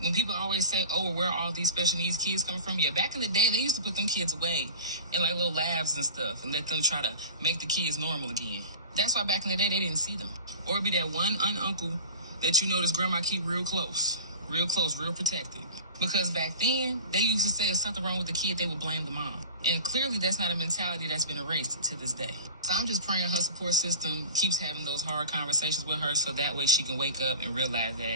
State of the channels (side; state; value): both; inverted; correlation -0.40